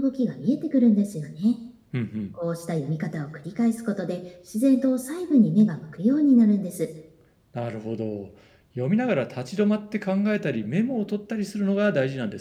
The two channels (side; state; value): both; identical; correlation 1.00